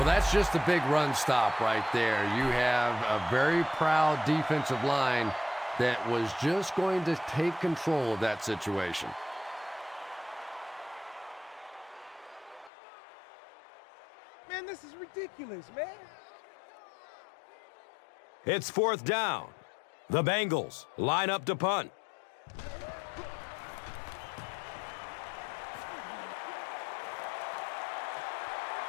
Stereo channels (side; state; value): right; drops out; at 12.7 s